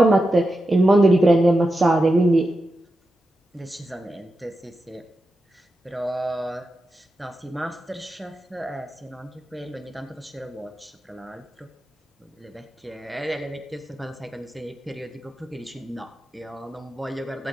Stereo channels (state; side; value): normal; both; correlation 0.90